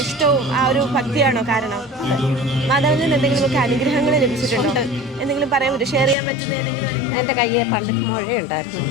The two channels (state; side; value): drops out; right; at 6.2 s